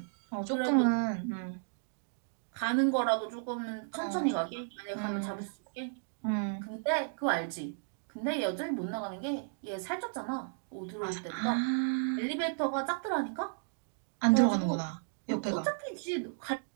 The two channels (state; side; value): silent; left; digital silence